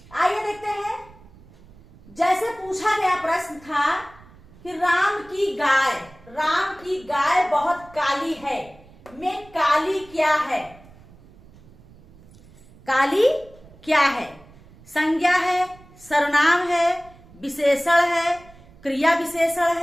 आइए देखते हैं। जैसे पूछा गया प्रश्न था कि राम की गाय बहुत काली है, में काली क्या है? काली क्या है? संज्ञा है, सर्वनाम है, विशेषण है, क्रिया विशेषण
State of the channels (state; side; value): noise; right; rumble, 24 dB below the sound